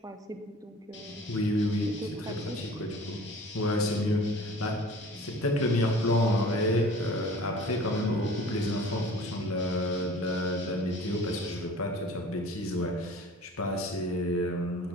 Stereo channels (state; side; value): normal; both; correlation 0.45